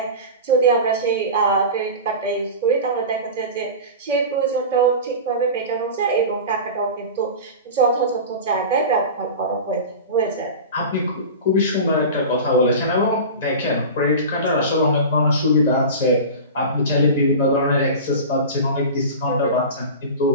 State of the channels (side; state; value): both; inverted; correlation -0.30